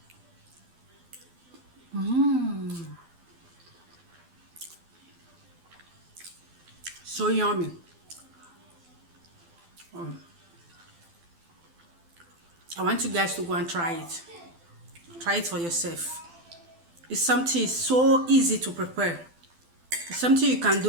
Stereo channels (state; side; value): late; left; 12 ms